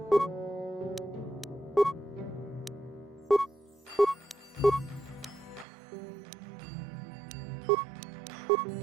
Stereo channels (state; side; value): drops out; left; at 5.7 s